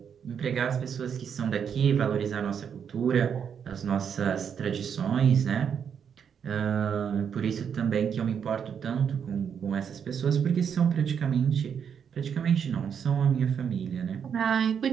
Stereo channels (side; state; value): left; quieter; 7.5 dB